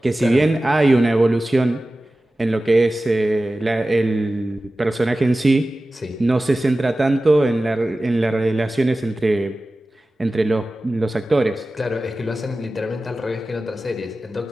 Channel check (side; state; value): both; normal; correlation 0.96